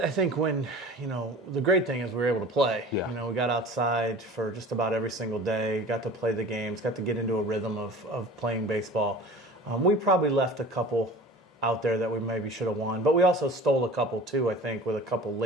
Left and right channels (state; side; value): normal; both; correlation 0.40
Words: think when, the great thing is we were able to play. Yeah. We got outside for just about every single day, got to play the games, got to get into a rhythm of playing baseball. We probably left a couple out there that we maybe should have won, but we also stole a couple too, I think, with a couple